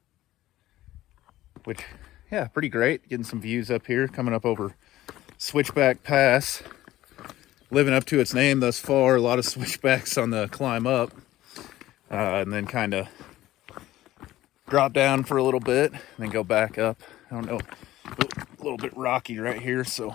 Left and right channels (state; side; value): quieter; right; 15.2 dB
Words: Which, yeah, pretty great. Getting some views up here. Coming up over Switchback Pass. Living up to its name thus far. A lot of switchbacks on the climb up. And then kind of drop down for a little bit. And then go back up. I don't know. A little bit rocky right here.